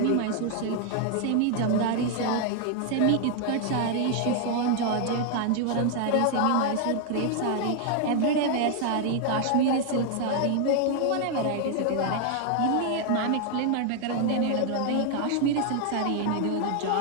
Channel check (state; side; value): different; both; correlation 0.00